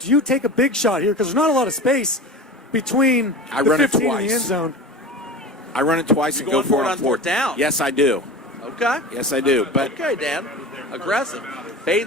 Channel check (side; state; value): both; normal; correlation 0.32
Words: you take a big shot here? Because there's not a lot of space between the 15 and the end zone. I run it twice and go for it on fourth down. Yes, I do. Okay. Yes, I do. But Okay, Dan. Aggressive.